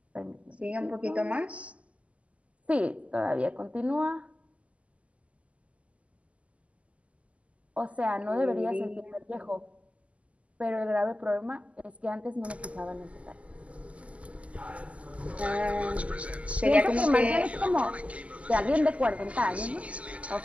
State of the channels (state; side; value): late; left; 0.064 ms